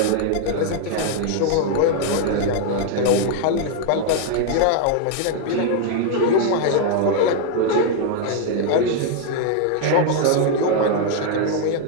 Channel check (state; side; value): different; both; correlation 0.00